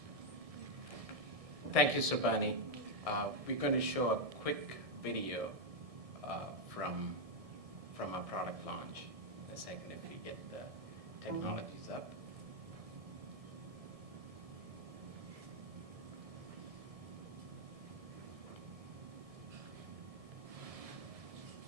Thank you, Sabani. We're going to show a quick video from our product launch. A second, if you get the technologies up.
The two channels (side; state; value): left; late; 1.7 ms